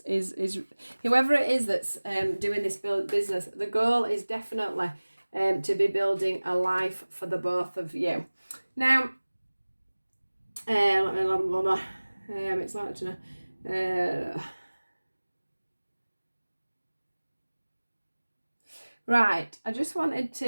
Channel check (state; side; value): inverted; both; correlation -1.00